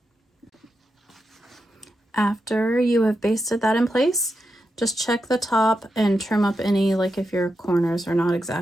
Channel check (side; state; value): both; normal; correlation 0.87